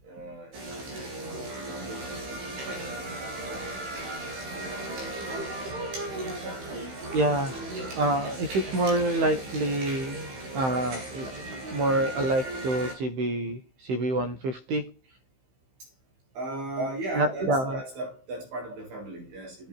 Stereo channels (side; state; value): left; late; 15 ms